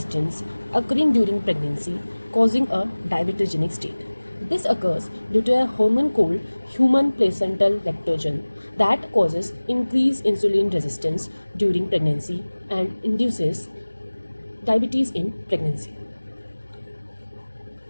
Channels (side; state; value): both; inverted; correlation -1.00